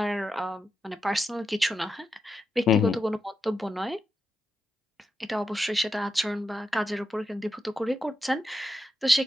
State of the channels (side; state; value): both; normal; correlation 0.87